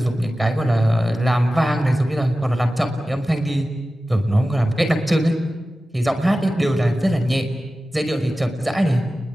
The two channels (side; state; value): both; normal; correlation 0.95